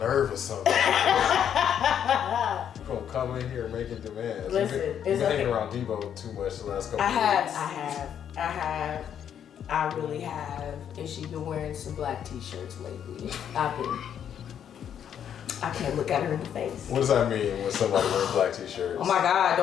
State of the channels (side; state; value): right; quieter; 9.0 dB